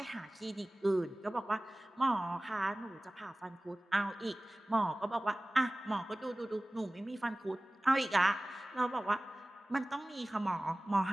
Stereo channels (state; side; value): normal; both; correlation 0.98